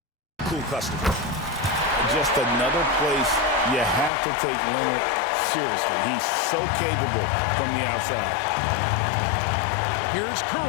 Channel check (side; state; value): right; drops out; at 4.1 s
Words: cool customer. Just another place you have to take Leonard seriously. He's so capable from the outside. Here's